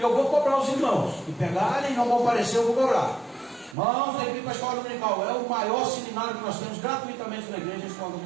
eu vou cobrar os irmãos, que pegarem e não vão aparecer, eu vou cobrar. Irmãos, tem que vir para a escola dominical. É o maior seminário que nós temos gratuitamente na igreja, a escola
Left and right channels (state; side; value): drops out; left; at 3.8 s